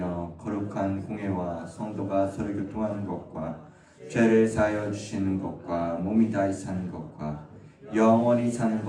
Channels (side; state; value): both; identical; correlation 1.00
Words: 거룩한 공회와 성도가 서로 교통하는 것과 죄를 사하여 주시는 것과 몸이 다시 사는 것과 영원히 사는